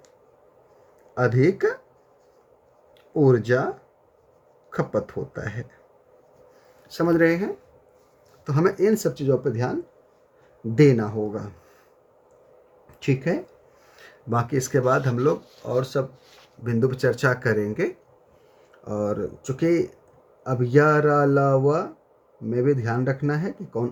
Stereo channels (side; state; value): both; identical; correlation 1.00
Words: अधिक ऊर्जा खपत होता है। समझ रहे हैं? तो हमें इन सब चीज़ों पर ध्यान देना होगा, ठीक है। बाकी इसके बाद हम लोग और सब बिंदु पर चर्चा करेंगे। और चूँकि अब अलावा में भी ध्यान रखना है कि